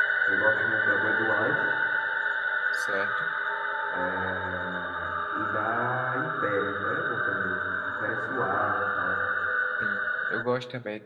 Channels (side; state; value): both; identical; correlation 1.00